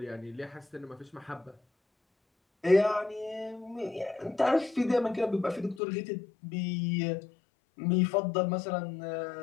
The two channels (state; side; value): drops out; right; at 5.8 s